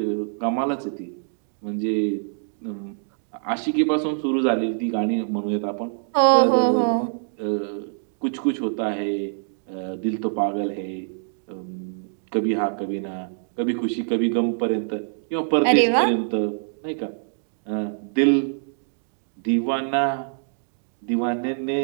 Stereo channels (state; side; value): silent; left; digital silence